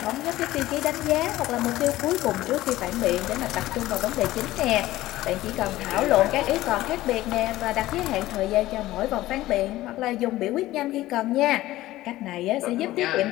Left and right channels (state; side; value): quieter; right; 16.2 dB